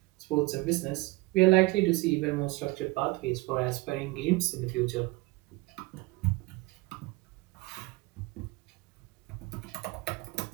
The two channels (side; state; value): left; quieter; 22.8 dB